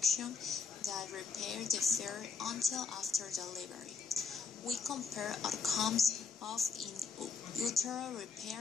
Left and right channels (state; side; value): quieter; right; 5.1 dB